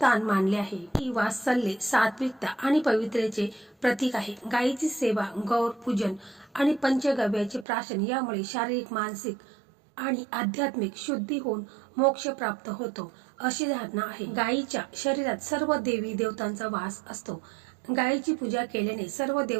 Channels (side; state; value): left; drops out; at 7.7 s